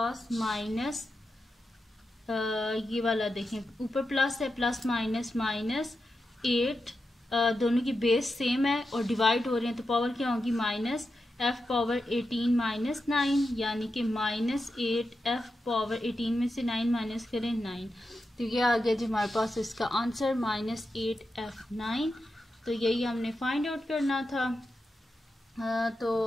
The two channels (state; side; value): normal; both; correlation 0.89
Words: माइनस ये वाला देखें ऊपर प्लस है, प्लस माइनस माइनस 8, दोनों की बेस सेम है और डिवाइड हो रहे हैं तो पावर क्या होगी माइनस f पावर 18 माइनस 9, यानी कि -8 f पावर 18 में से 9 माइनस करें 9। तो ये आ गया जी हमारे पास इसका आंसर -8 f9। तो यही हमने फाइंड आउट करना था।